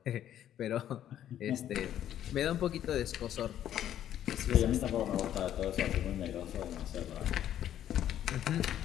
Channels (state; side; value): quieter; right; 11.1 dB